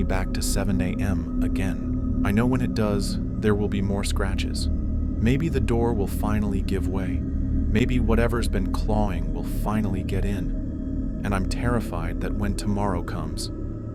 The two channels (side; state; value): both; identical; correlation 1.00